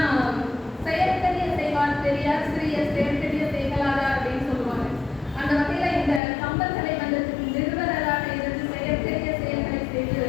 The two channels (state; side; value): drops out; right; at 6.2 s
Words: செயற்கரிய செய்வார் பெரியார், சிறிய செயற்கரிய செய்களாதார் அப்படின்னு சொல்லுவாங்க. அந்த வகையில் இந்த கம்பன் கலை மன்றத்துக்கு நிறுவனராக இருந்து செயற்கரிய செயல்களை